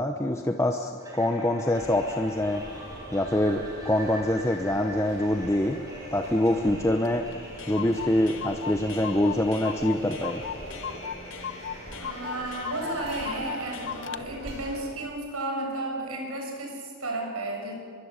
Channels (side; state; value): both; normal; correlation 0.65